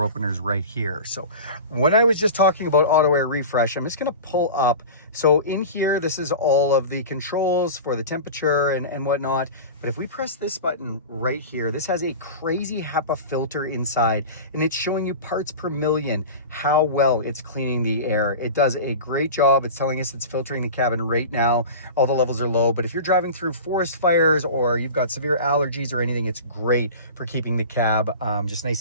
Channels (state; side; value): inverted; both; correlation -0.32